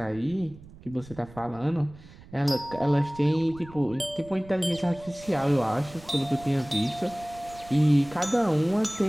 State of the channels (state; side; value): noise; right; rumble, 20 dB below the sound